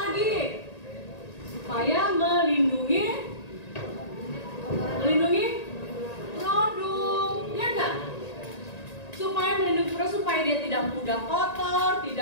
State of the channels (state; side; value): late; right; 1.9 ms